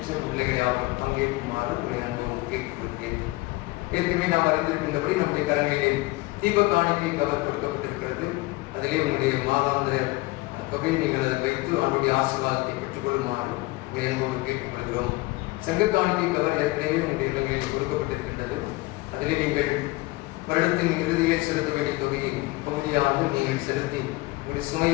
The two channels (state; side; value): quieter; right; 21.7 dB